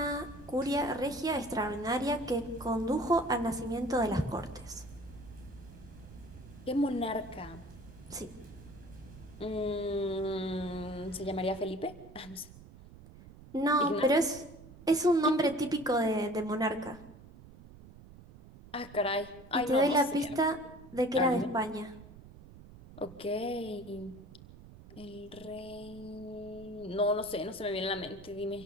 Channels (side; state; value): right; noise; rumble, 19 dB below the sound